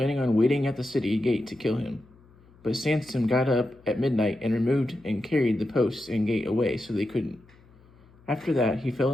on waiting at the city gate to kill him. But Samson got up at midnight and removed and carried the posts and gate away so they couldn't. After that, he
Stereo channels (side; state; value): left; noise; hum, 28 dB below the sound